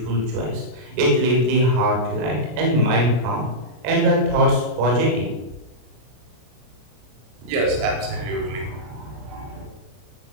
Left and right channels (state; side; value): late; left; 33 ms